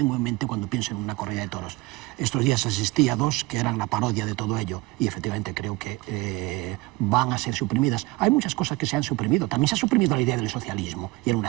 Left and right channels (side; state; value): left; quieter; 22.3 dB